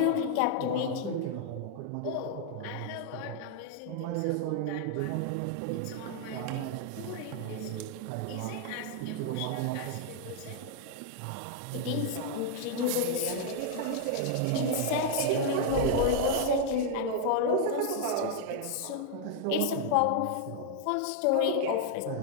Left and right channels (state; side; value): different; both; correlation 0.00